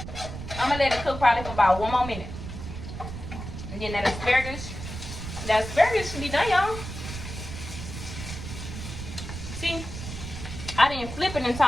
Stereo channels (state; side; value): noise; right; rumble, 8 dB below the sound